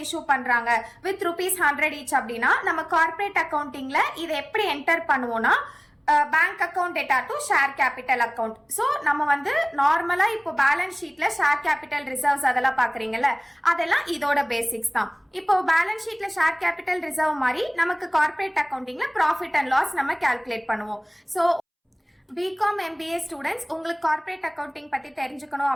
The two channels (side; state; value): both; identical; correlation 1.00